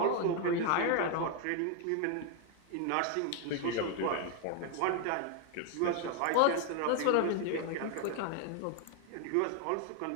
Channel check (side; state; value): both; different; correlation 0.01